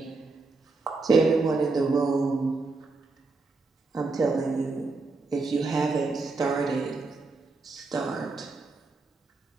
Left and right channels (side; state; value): left; quieter; 3.7 dB